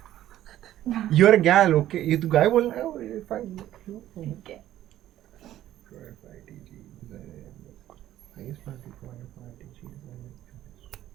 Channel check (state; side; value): quieter; left; 13.0 dB